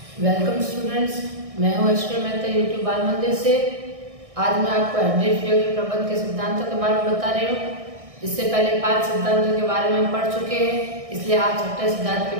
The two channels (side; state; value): left; late; 1.6 ms